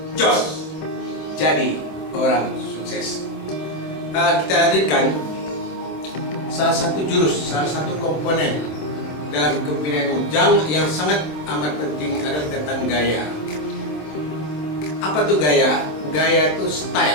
Jos. Jadi orang sukses. Kita hadirkan salah satu jurus, salah satu komponen dalam kepemimpinan Jang yang sangat amat penting adalah tentang gaya. Apa tuh gaya? Gaya itu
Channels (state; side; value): late; right; 26 ms